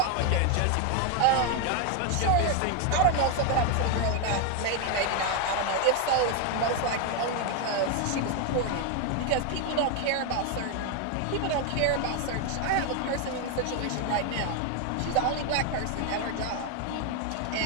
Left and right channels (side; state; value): both; different; correlation 0.01